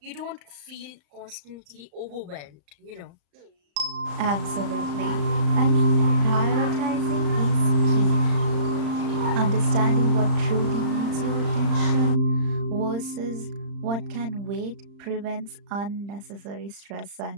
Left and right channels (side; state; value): left; late; 35 ms